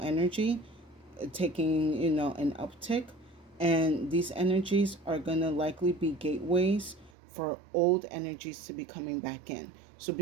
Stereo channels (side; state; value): left; drops out; at 7.1 s